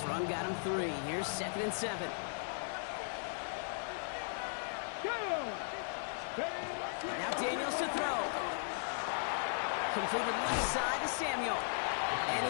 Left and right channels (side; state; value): right; silent; digital silence